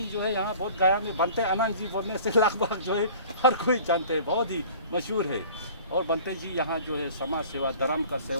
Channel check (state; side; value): inverted; both; correlation -0.46